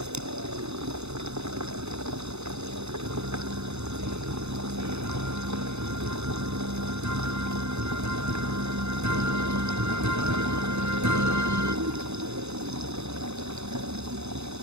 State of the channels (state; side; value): late; left; 0.81 ms